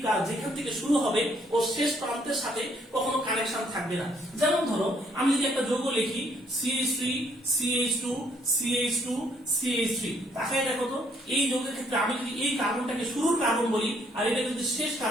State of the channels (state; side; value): normal; both; correlation 0.68